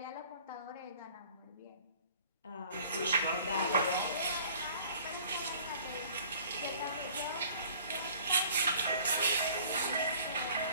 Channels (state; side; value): inverted; both; correlation -0.51